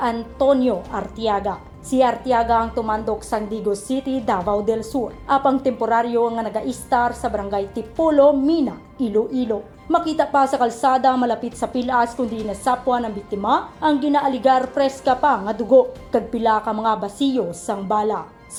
Artiaga. Si Artiaga ang tumandok sang Digos City, Davao del Sur. Apang temporaryo nga naga-istar sa barangay Tipolo, Mina, Iloilo. Makita pa sa kalsada malapit sa pilas kundi nasapuan ng biktima ang ginaaligar preska pa nga dugo kag pila ka mga basiyo sang bala.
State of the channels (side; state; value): both; identical; correlation 1.00